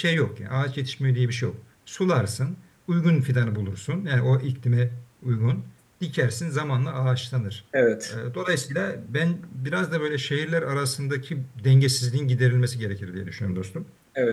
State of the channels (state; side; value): identical; both; correlation 1.00